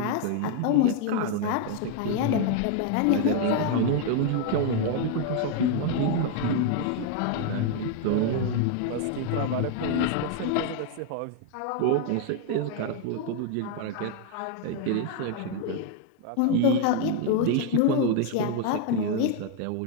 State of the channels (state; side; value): different; both; correlation 0.00